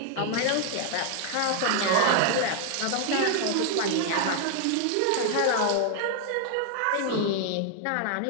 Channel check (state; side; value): different; both; correlation 0.00